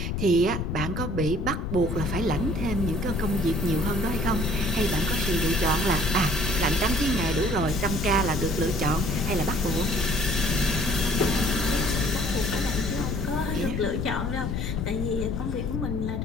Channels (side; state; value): left; noise; rumble, 2 dB below the sound